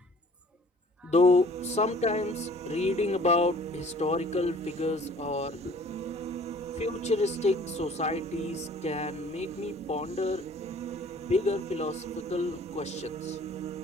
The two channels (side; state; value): both; normal; correlation 0.53